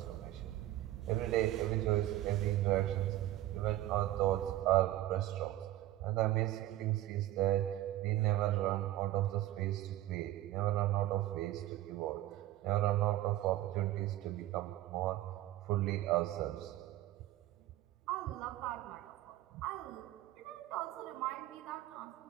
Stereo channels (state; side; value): quieter; left; 14.8 dB